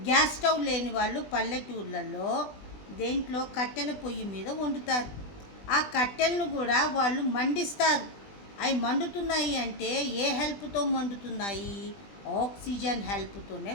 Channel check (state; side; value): late; right; 20 ms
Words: గ్యాస్ స్టవ్ లేని వాళ్ళు పల్లెటూర్లలో దేంట్లో కట్టెల పొయ్యి మీద వండుతారు. ఆ కట్టెలను కూడా వాళ్ళు మండిస్తారు. అవి మండుతున్నాయి అంటే ఏ హెల్ప్తో మండుతున్నాయి, ఆక్సిజన్ హెల్ప్తోనే